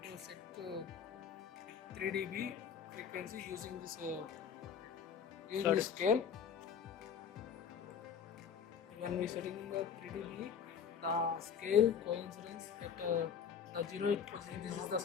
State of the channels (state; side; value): quieter; right; 7.4 dB